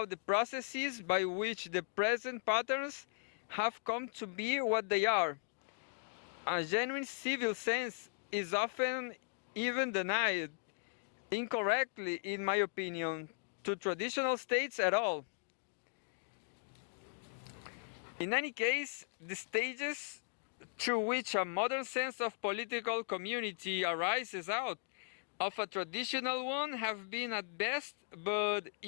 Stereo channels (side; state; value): right; silent; digital silence